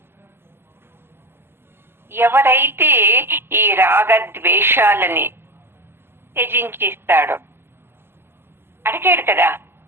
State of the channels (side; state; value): left; late; 0.11 ms